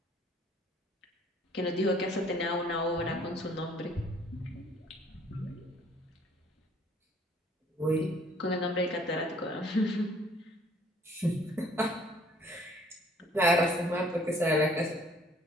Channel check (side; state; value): both; normal; correlation 0.58